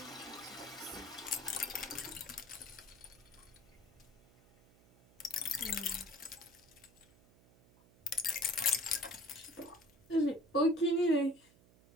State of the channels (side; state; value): right; noise; hum, 27 dB below the sound